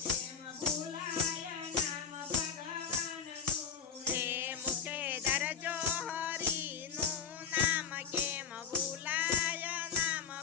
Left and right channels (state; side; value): quieter; right; 6.8 dB